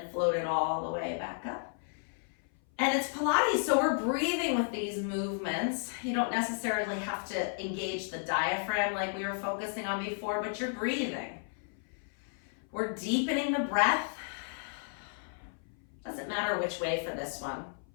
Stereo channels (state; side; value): silent; right; 56 dB below the other